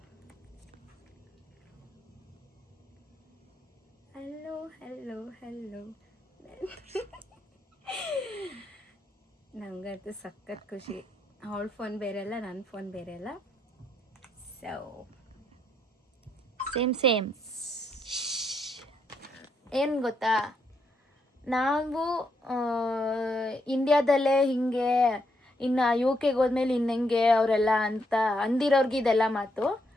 ಹಲೋ ಇವತ್ತು ಸಖತ್ ಖುಷಿ. ಅವಳ ಫೋನ್ ಬೇರೆ ಅಲ್ಲ, ನನ್ನ ಫೋನ್ ಬೇರೆ ಅಲ್ಲ. ಸೊ ಸೇಮ್ ಏನು ಗೊತ್ತಾ, ನಾವು ಇಂಡಿಯಾದಲ್ಲೇ ಹಿಂಗೆ, ಇನ್ನು ಯು ಕೆಗೆ ಹೋದ್ಮೇಲೆ ಇನ್ನೆಂಗೆ ಅವರೆಲ್ಲ ಅಂತ ಅಂದಿರೋರ್ಗೆ ಇದೆಲ್ಲ ಮಾತು.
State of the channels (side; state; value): both; normal; correlation 0.77